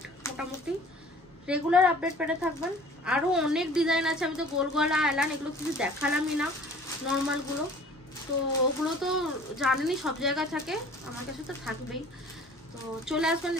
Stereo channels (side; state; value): both; normal; correlation 0.49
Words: মোটামুটি রেগুলার আপডেট পেতে থাকবেন। আরও অনেক ডিজাইন আছে, আমি তো গোল গলা এলান এগুলো কিছু দেখালামই না, নর্মালগুলো। তো ওগুলো তো জানেনই সব জায়গায় থাকে, আমার কাছে তো থাকবেই। তো চলে আসবেন।